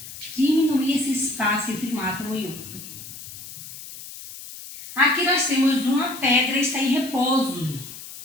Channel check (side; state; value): left; noise; hiss, 13 dB below the sound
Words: diminuir esse espaço entre um átomo e outro. Aqui nós temos uma pedra e está em repouso.